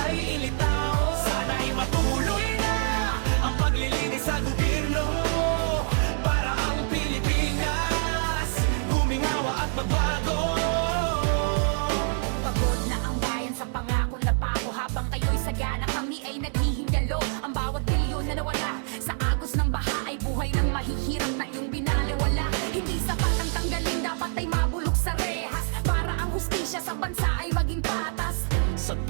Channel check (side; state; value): left; silent; 61 dB below the other